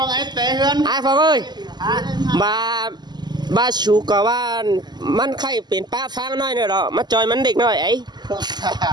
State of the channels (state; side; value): late; left; 0.21 ms